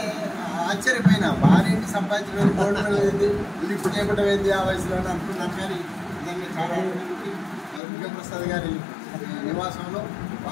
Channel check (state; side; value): drops out; right; at 7.8 s